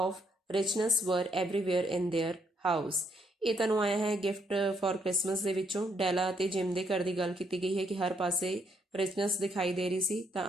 richness were everywhere in their house. ਇਹ ਤੁਹਾਨੂੰ ਆਇਆ ਹੈ ਗਿਫਟ ਫॉर ਕ੍ਰਿਸਮਸ ਦੇ ਵਿੱਚੋਂ। ਡੈਲਾ ਅਤੇ ਜਿਮ ਦੇ ਘਰ ਦੀ ਗੱਲ ਕੀਤੀ ਗਈ ਹੈ ਕਿ ਹਰ ਪਾਸੇ ਰਿਚਨੈਸ ਦਿਖਾਈ ਦੇ ਰਹੀ ਸੀ, ਤਾਂ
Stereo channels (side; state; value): both; normal; correlation 0.73